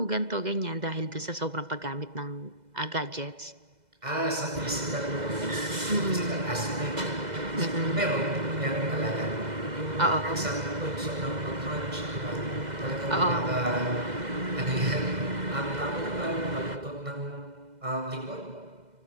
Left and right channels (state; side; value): late; left; 2.0 ms